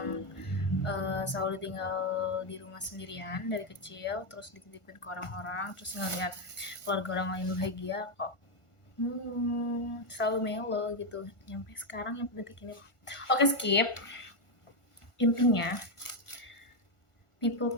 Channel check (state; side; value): late; right; 1.4 ms